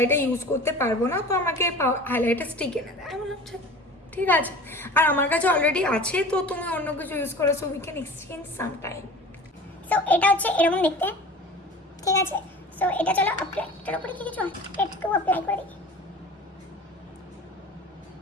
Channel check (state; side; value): normal; both; correlation 0.39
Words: ইউজ করতে পারবো না, তো আমাকে হাইলাইটার স্টিক এনে দেয়। আমি বললাম ঠিক আছে, আর আমার কাছে অলরেডি আছে, তো তুমি অন্য কিছু ইউজ করো, so we can exchange some time. So এটা হচ্ছে এরকম দেখতে, ঠিক আছে। সো এটা চলো অ্যাপ্লাই, এটার উপরে কি কিছু একটু অ্যাপ্লাই করে দিই।